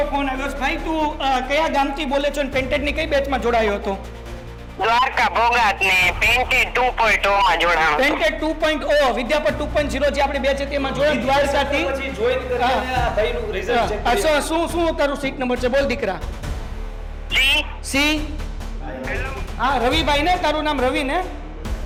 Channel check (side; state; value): both; identical; correlation 1.00